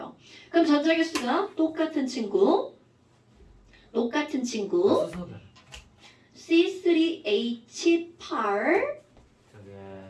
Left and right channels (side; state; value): both; identical; correlation 1.00